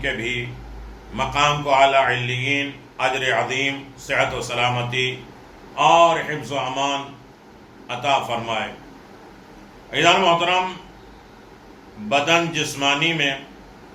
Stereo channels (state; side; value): identical; both; correlation 1.00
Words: کے بھی مقام کو اعلیٰ علیین، اجر عظیم، صحت و سلامتی اور حفظ و امان عطا فرمائے۔ عزیزان محترم، بدن جسمانی میں